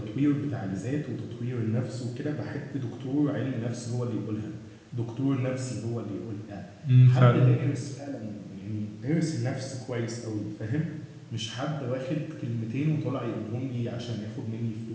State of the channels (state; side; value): identical; both; correlation 1.00